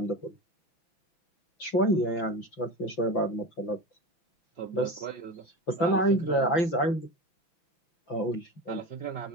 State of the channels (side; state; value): right; late; 5.9 ms